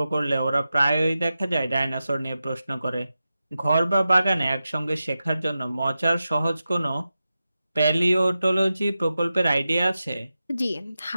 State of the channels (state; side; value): inverted; both; correlation -0.92